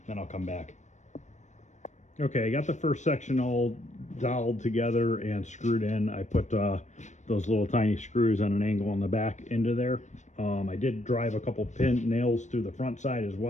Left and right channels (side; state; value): right; late; 0.34 ms